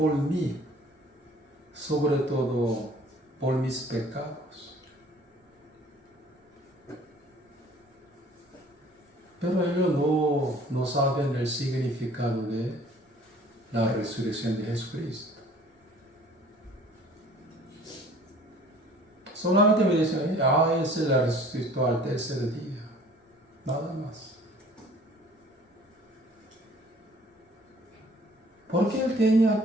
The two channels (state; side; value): normal; both; correlation 0.52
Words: mí, sobre todo por mis pecados. Pero ellos no saben el significado de la resurrección de Jesucristo. Solamente me dicen, Él se la resucitó al tercer día. Nada más. ¿Por qué Él tenía